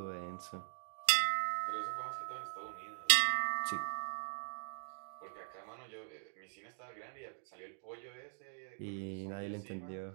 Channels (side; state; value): left; silent; digital silence